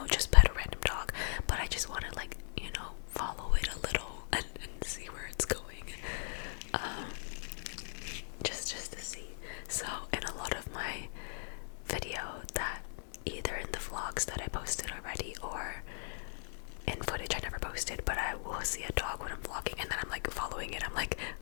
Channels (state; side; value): silent; right; digital silence